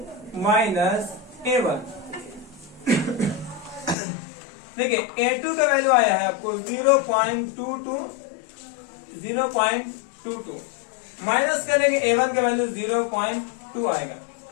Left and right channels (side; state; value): right; drops out; at 4.0 s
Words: माइनस A1। देखिए A2 का वैल्यू आया है आपको 0.22 माइनस करेंगे A1 का वैल्यू 0.2 आएगा।